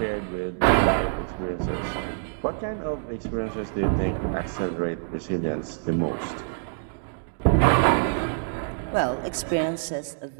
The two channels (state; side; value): silent; left; digital silence